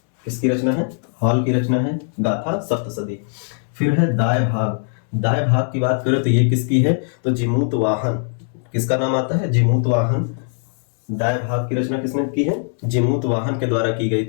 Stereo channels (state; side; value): silent; right; digital silence